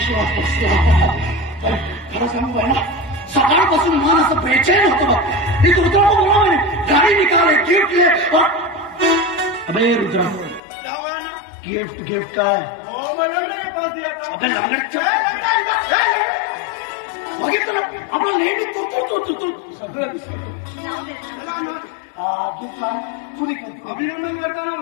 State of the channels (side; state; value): right; drops out; at 10.6 s